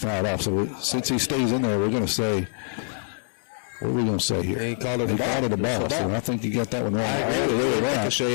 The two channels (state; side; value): silent; right; 62 dB below the other